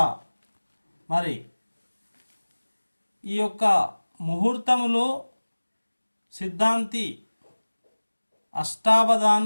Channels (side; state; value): both; inverted; correlation -1.00